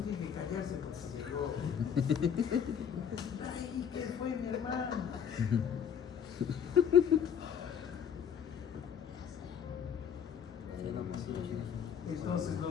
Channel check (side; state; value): right; quieter; 8.0 dB